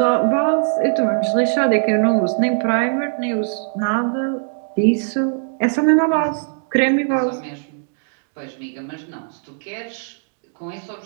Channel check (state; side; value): silent; left; digital silence